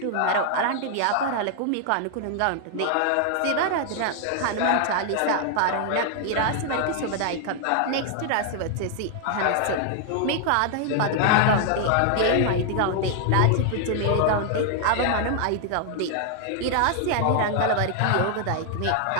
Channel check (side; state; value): both; different; correlation 0.00